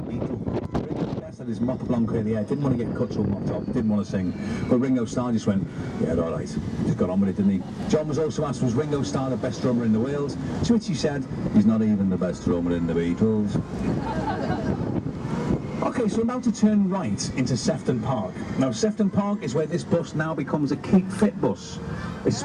Beatle. Ringo was best had his mop blonde curly hair, didn't want to get cut or mopped up, didn't want to sing. But Ringo Starr just went, yeah, all right. Just got on with it, didn't he? John was also asked, was Ringo Starr the best drummer in the world? To which he said, he's not even the best drummer in the Beatles. Okay, so we're about to turn right into Sefton Park. Now, Sefton Park is where this bus now becomes a Keep Fit bus,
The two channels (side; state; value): both; identical; correlation 1.00